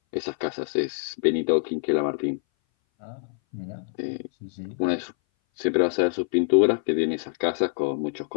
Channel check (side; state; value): right; silent; 59 dB below the other